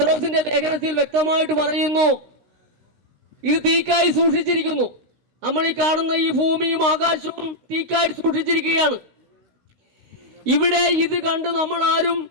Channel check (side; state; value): left; late; 16 ms